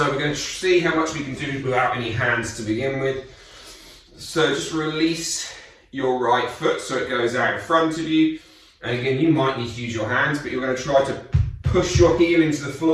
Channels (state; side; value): identical; both; correlation 1.00